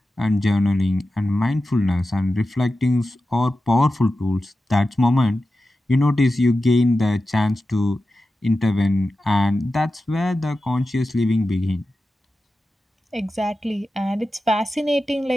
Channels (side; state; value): both; normal; correlation 0.92